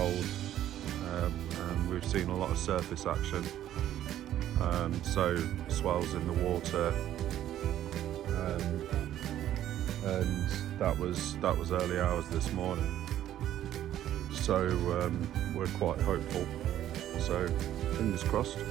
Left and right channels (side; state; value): left; quieter; 12.0 dB